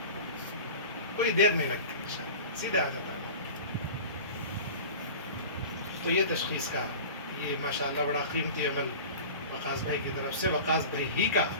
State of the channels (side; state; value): both; inverted; correlation -0.36